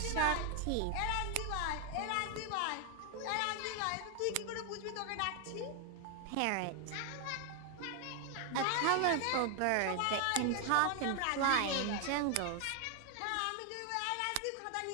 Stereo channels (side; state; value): both; different; correlation 0.00